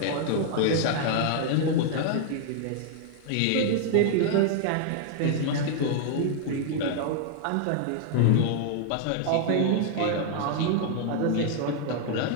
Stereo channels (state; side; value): different; both; correlation 0.00